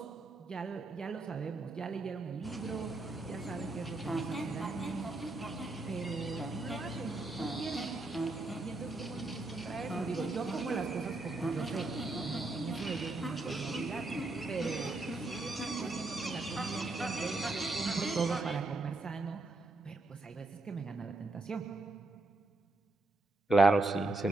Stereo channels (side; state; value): left; quieter; 3.0 dB